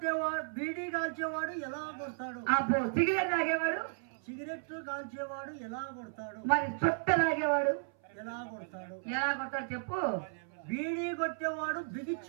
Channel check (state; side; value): silent; left; 55 dB below the other